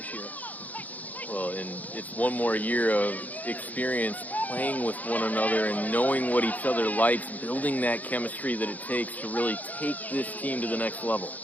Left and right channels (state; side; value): late; right; 0.079 ms